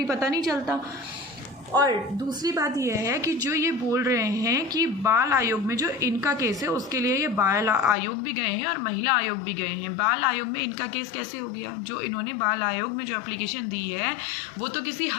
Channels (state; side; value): drops out; right; at 8.0 s